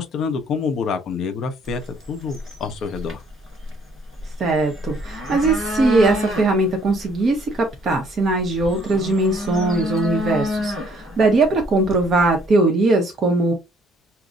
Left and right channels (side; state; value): both; normal; correlation 0.63